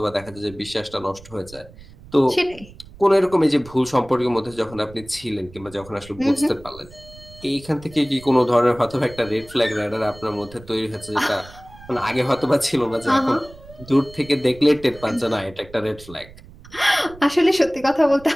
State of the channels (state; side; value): noise; right; rumble, 20 dB below the sound